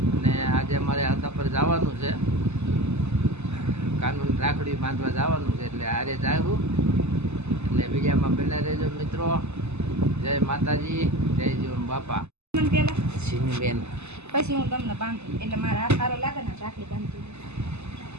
અને આજે અમારે હતા પર જવાનું છે, કાનૂન રાખડી બાંધવા જવાનું છે, એટલે આરે જાવું. એટલે બીજામાં બને રહેજો મિત્રો. જય માતાજી, જય જીવન બાપા. બેન પછી હું તમને બાંધું એટલે મારા હાથ સારો લાગે ને રાખડી બાંધું.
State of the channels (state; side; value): late; left; 0.81 ms